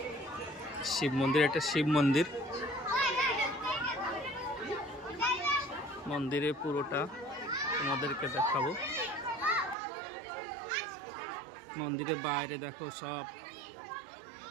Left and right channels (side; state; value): left; drops out; at 9.8 s